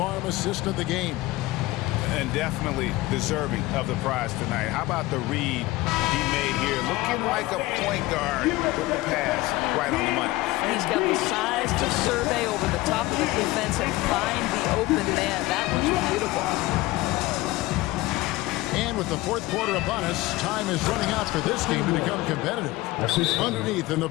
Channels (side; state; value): right; quieter; 19.2 dB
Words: assist of the game. And definitely deserving of the prize tonight. How about the read he made here? Looking like a point guard with the pass right on the money. He's got the size to survey over the top of the defense and find the open man. That was beautiful. And with the fourth quarter upon us, time is running out for this game to become competitive. Underneath in the